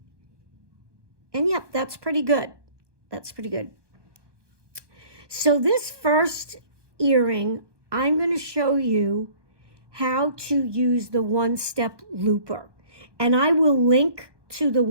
And yep, that's pretty good. That's pretty good. So this first earring, I'm going to show you how to use the one-step looper. And I will link to the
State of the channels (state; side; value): late; left; 1.2 ms